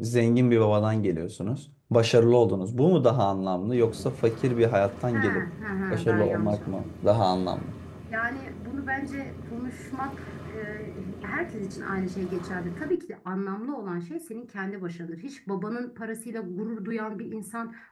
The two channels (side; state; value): both; identical; correlation 1.00